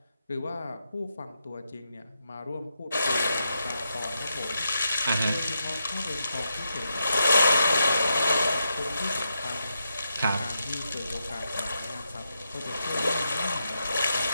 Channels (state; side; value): inverted; both; correlation -0.84